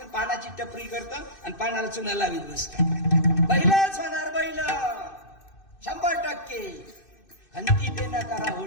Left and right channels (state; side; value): late; right; 2.6 ms